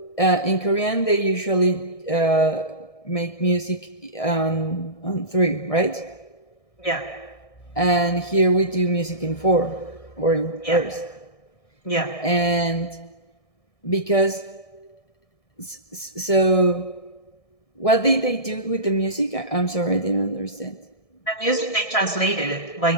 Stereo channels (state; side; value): late; right; 1.6 ms